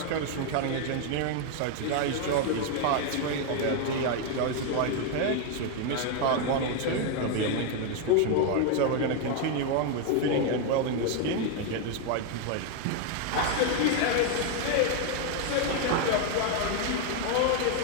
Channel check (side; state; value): both; different; correlation 0.01